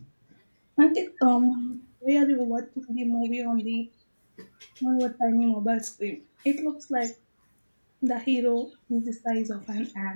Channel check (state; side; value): inverted; both; correlation -1.00